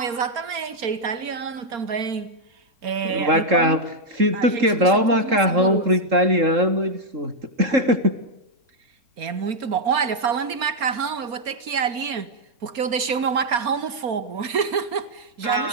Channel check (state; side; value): late; left; 4.3 ms